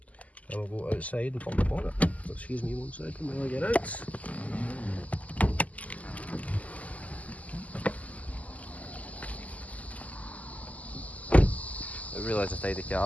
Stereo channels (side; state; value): right; late; 0.073 ms